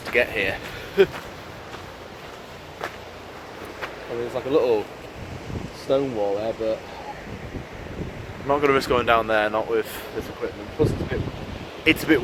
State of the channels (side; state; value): both; identical; correlation 1.00